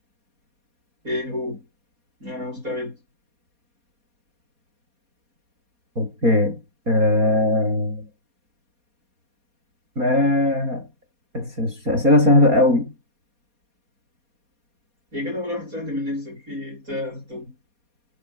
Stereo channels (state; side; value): late; left; 4.2 ms